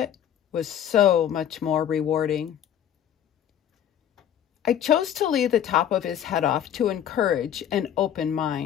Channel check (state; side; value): quieter; right; 10.0 dB